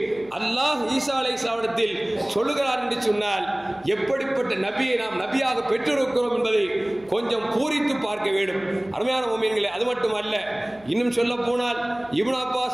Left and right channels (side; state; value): right; noise; hum, 26 dB below the sound